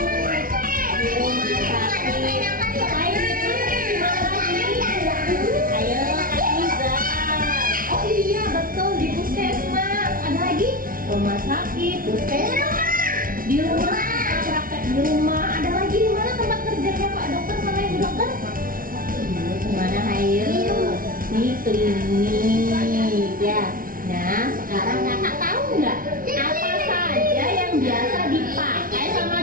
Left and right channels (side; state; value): left; late; 0.41 ms